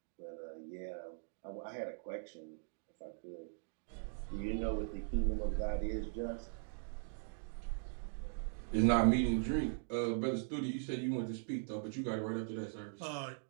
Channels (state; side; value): silent; left; digital silence